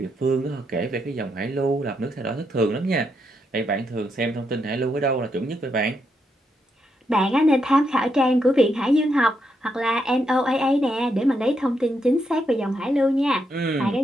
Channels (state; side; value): normal; both; correlation 0.80